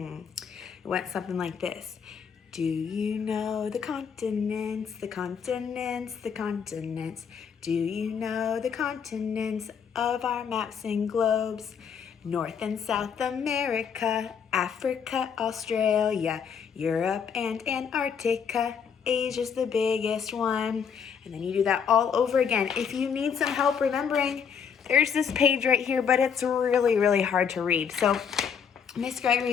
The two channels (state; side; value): quieter; right; 7.0 dB